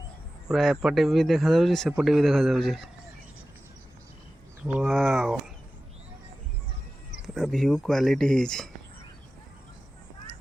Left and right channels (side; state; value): both; normal; correlation 0.95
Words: पूरा एपटे भी देखा जाउछि सेपटे भी देखा जाउछि। वाओ पूरा व्यू क्वालिटी है